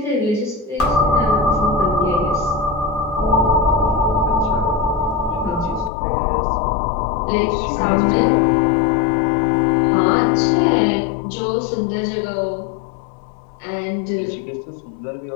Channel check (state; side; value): drops out; right; at 5.9 s